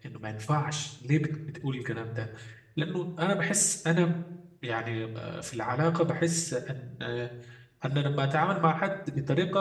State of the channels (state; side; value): identical; both; correlation 1.00